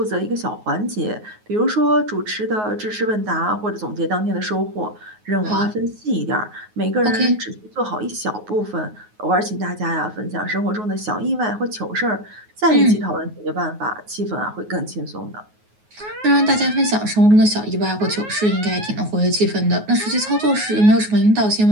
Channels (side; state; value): left; late; 9.4 ms